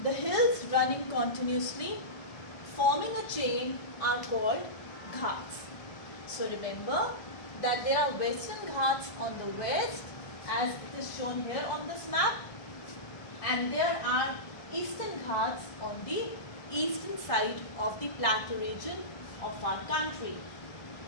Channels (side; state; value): right; late; 1.6 ms